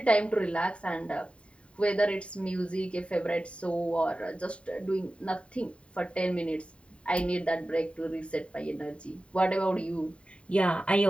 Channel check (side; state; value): right; late; 0.060 ms